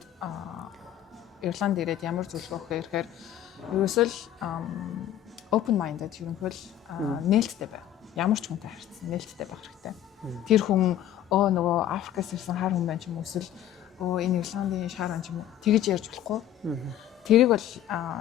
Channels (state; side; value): quieter; right; 11.4 dB